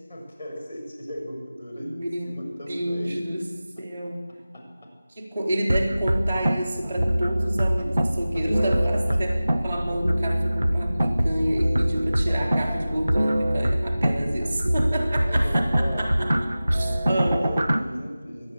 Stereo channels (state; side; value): inverted; both; correlation -0.96